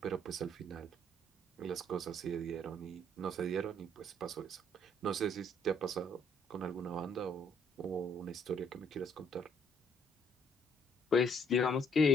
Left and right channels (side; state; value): both; normal; correlation 0.65